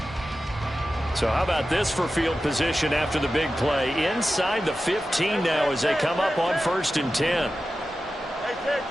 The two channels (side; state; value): both; normal; correlation 0.93